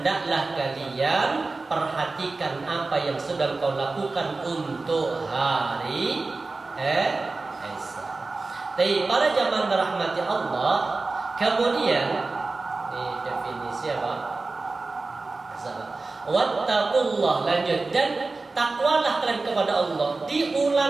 kalian perhatikan apa yang sedang kau lakukan untuk hari esok. Tapi para jamaah rahmati Allah, kemudian ini definisi apa? Wattaqullah, lanjut, dan takwalah kalian kepada Allah.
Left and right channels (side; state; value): left; quieter; 3.6 dB